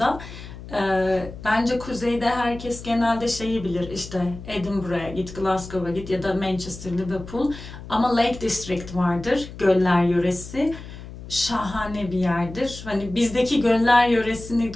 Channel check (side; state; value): left; noise; hum, 13 dB below the sound